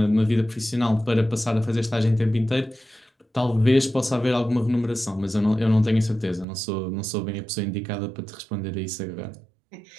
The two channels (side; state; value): left; drops out; at 6.5 s